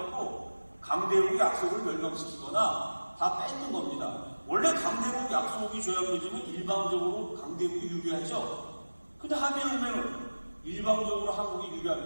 강대국이 약소국을 멸망시키거나 다 뺏는 겁니다. 원래 강대국 약소국이 조약 맺으면 일방적으로 강대국이 유리하죠. 근데 한미동맹은 일방적으로 한국이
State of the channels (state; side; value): inverted; both; correlation -1.00